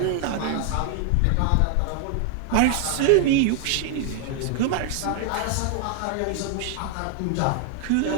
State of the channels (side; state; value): both; different; correlation 0.00